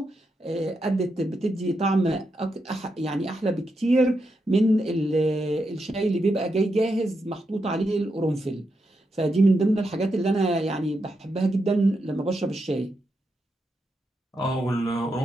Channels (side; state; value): both; normal; correlation 0.84